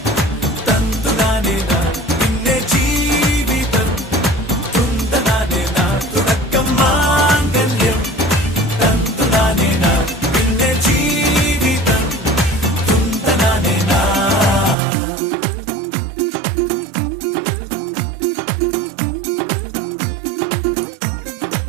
തന്തുനാനേന പിന്നെ ജീവിതം തുന്തനാനേന തുടക്കം മാംഗല്യം തന്തുനാനേന പിന്നെ ജീവിതം തുന്തനാനേന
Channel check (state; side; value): drops out; left; at 14.8 s